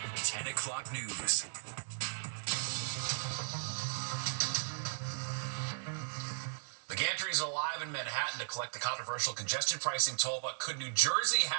10 o'clock news. The Gantrys are live in Manhattan to collect the controversial congestion pricing toll, but could New Jersey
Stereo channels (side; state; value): left; silent; digital silence